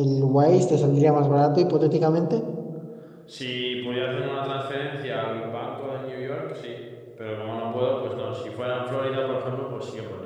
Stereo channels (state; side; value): identical; both; correlation 1.00